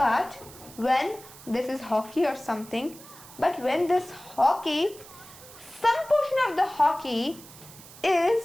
when this is hockey or something, but when this hockey, some portion of the hockey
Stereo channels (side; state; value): right; noise; hiss, 19 dB below the sound